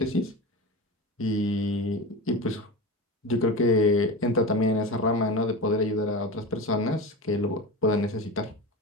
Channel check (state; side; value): normal; both; correlation 0.26